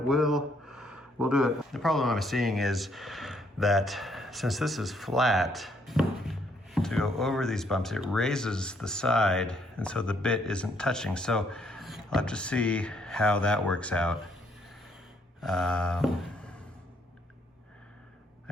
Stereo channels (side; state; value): both; normal; correlation 0.69